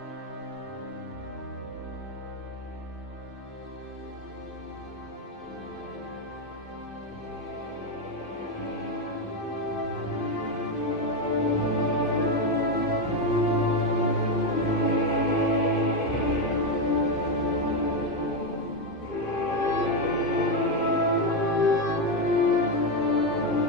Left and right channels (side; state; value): right; late; 2.5 ms